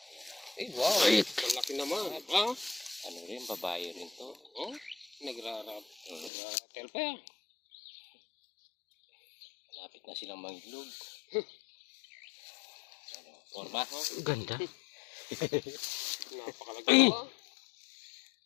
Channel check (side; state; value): right; drops out; at 6.3 s